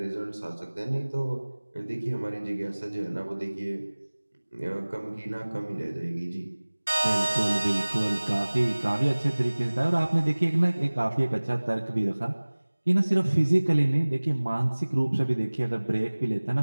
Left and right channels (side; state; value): both; inverted; correlation -1.00